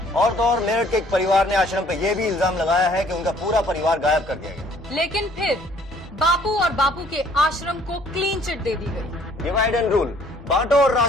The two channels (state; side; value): normal; both; correlation 0.59